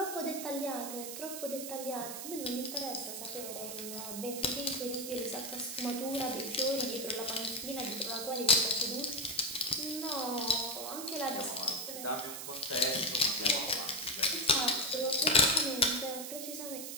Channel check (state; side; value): noise; right; hiss, 7 dB below the sound